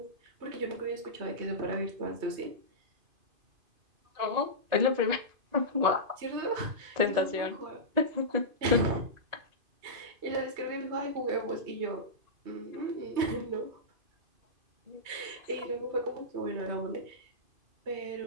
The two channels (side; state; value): left; late; 2.5 ms